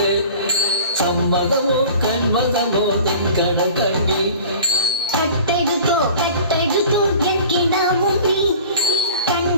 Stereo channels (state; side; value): inverted; both; correlation -0.41